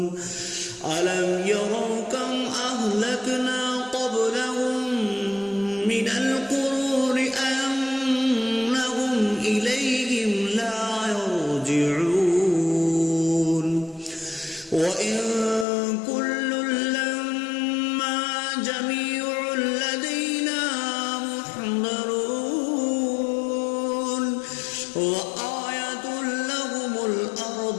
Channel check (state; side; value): drops out; right; at 15.7 s